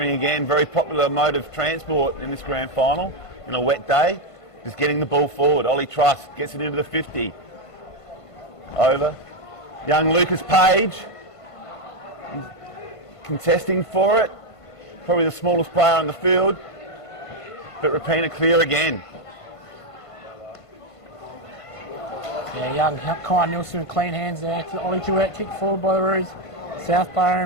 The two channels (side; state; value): right; late; 1.5 ms